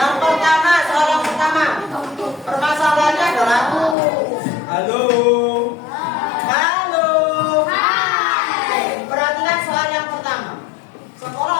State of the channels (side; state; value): right; drops out; at 4.0 s